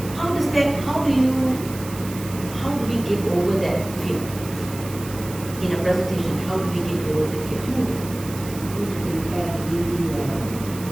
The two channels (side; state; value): right; noise; hiss, 14 dB below the sound